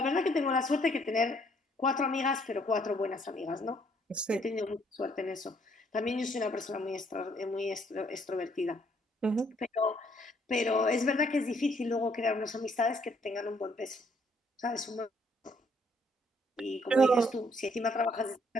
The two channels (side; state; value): both; normal; correlation 0.67